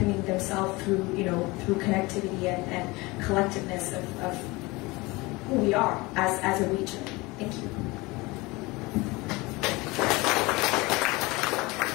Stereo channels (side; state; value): right; quieter; 23.2 dB